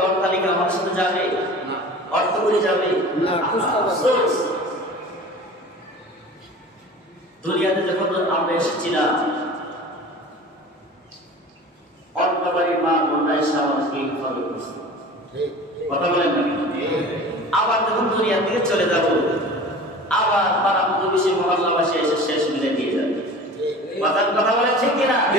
অট্টালিকা আমার সাথে যাবে, অর্থ করে যাবে না। দুনিয়াতে যখন আমরা এসেছিলাম, অন্য বাড়ির মা বোনরা এসে আমাদেরকে ইনফর্ম করছে, কথা বলেন না? আবার যখন দুনিয়া থেকে চলে যাব, আবার পাড়া প্রতিবেশী মহল্লাবাসী এসে শেষ মিলে দিয়ে যাবে। কথা বলেন ঠিক কিনা?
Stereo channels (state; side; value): normal; both; correlation 0.39